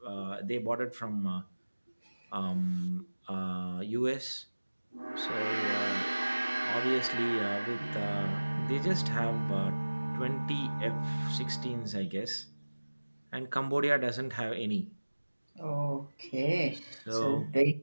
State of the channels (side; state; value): both; inverted; correlation -1.00